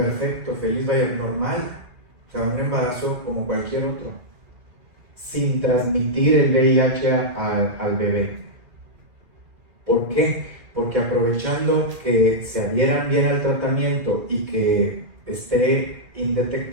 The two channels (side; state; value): left; late; 2.1 ms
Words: feliz, vaya, normal, o sea, un embarazo como cualquier otro, sin transmitir el VIH al bebé. ¿Por qué? Porque aprovechando que se adhieran bien al tratamiento y que esté